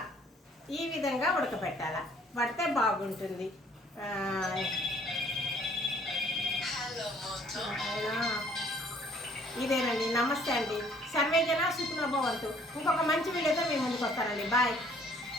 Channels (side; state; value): both; normal; correlation 0.59